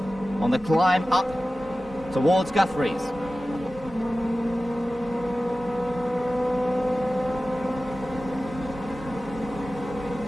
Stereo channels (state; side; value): normal; both; correlation 0.95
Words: on the climb up towards Guthrie's.